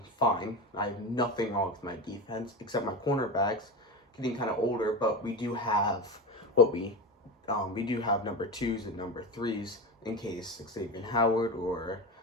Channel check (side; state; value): both; normal; correlation 0.22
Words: fine. I have nothing wrong with my defense except my cornerbacks getting kind of older, but we do have we do have number 2s and number 3s in case Xavier Howard or